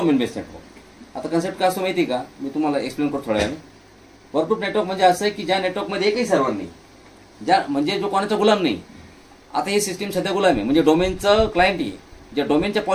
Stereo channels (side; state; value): both; identical; correlation 1.00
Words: बेस्ड नेटवर्क. आता कन्सेप्ट काय असतो माहिती का, मी तुम्हाला एक्सप्लेन करतो थोड्या वेळाने. वर्कग्रुप नेटवर्क म्हणजे असं आहे की ज्या नेटवर्कमध्ये एकही सर्व्हर नाही, म्हणजे जो कोणाचा गुलाम नाही. आता हे सिस्टीम सध्या गुलाम आहे, म्हणजे डोमेनचं क्लायंट आहे, ज्या डोमेनच्या